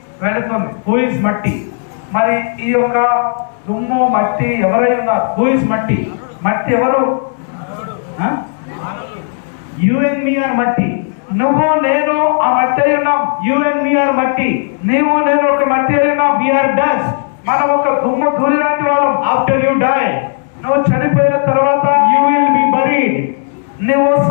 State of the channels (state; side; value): silent; right; 71 dB below the other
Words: వెళుతుంది. Who is matti? మరి ఈ యొక్క దుమ్ము మట్టి ఎవరై ఉన్నారు? Who is matti? మట్టి ఎవరు? Huh? You and me are matti. నువ్వు నేను ఆ మట్టి అయి ఉన్నాం. You and me are matti. నీవు నేను ఒక మట్టి అయి ఉన్నాం. We are dust. మనం ఒక దుమ్ము ధూళి లాంటి వాళ్ళం. After you die, నువ్వు చనిపోయిన తర్వాత you will be buried. నువ్వు